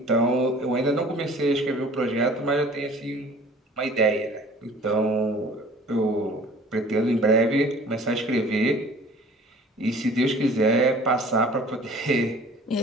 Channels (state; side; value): normal; both; correlation 0.48